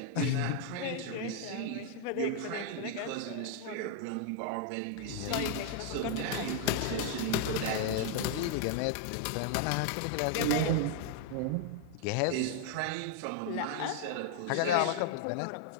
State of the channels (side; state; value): both; different; correlation 0.00